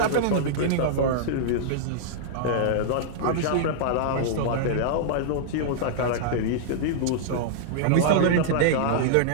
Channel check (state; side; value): different; both; correlation -0.02